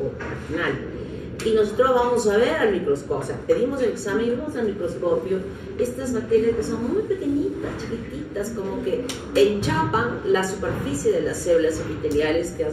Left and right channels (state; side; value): identical; both; correlation 1.00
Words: vaginal. Y nosotros vamos a ver al microscopio, o sea, pedimos el examen y vemos al microscopio estas bacterias que son muy pequeñitas, chiquititas, como que enchapan la superficie de las células epiteliales que